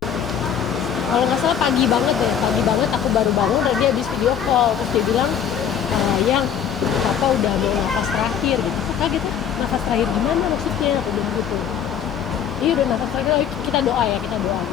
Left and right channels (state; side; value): quieter; right; 8.5 dB